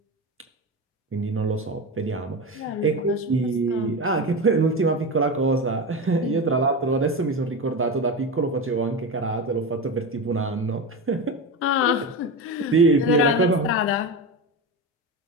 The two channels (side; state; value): both; normal; correlation 0.21